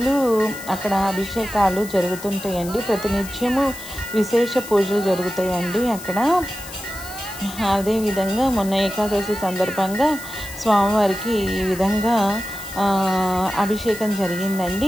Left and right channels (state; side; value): noise; left; hiss, 14 dB below the sound